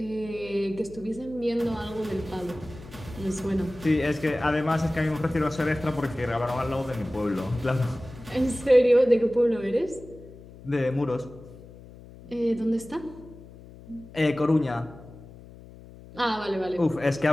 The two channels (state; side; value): noise; left; hum, 19 dB below the sound